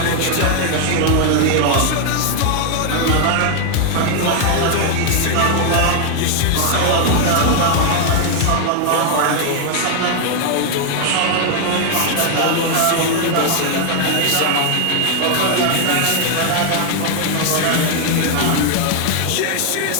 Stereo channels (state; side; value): different; both; correlation 0.00